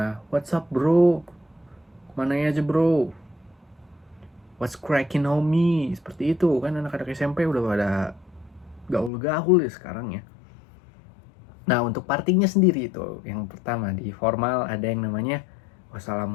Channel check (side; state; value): right; drops out; at 9.1 s